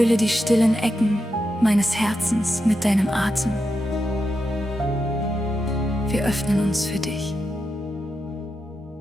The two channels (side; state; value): both; normal; correlation 0.87